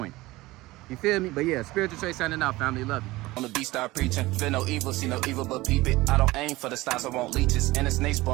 You feel me? But yeah, Spiritual Trey signing out, family. Love you. On the beat, start preaching. Feel no evil, see no evil, but peep it. I don't aim for the stars, I want leeches. And a snake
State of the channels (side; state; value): left; quieter; 19.5 dB